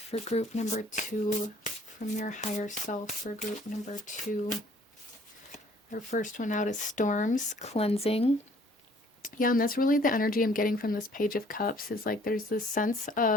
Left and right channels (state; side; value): normal; both; correlation 0.57